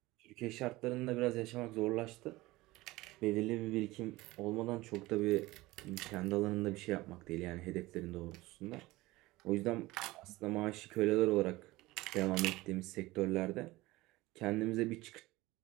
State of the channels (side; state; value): left; quieter; 19.6 dB